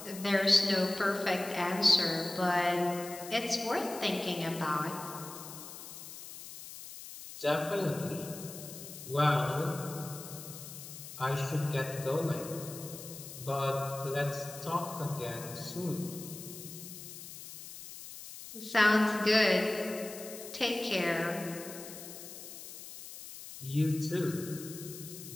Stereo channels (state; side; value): noise; left; hiss, 12 dB below the sound